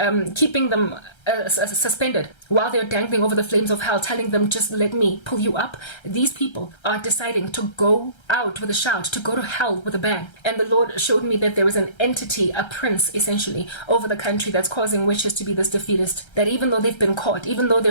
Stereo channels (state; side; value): late; right; 1.3 ms